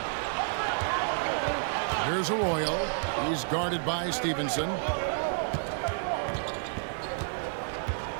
Here's Arroyo. He's guarded by Stevenson.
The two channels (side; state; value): left; silent; digital silence